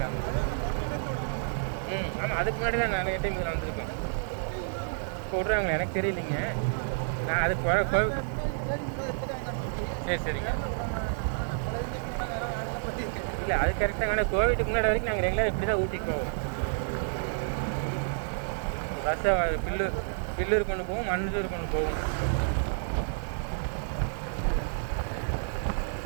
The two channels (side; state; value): left; silent; 57 dB below the other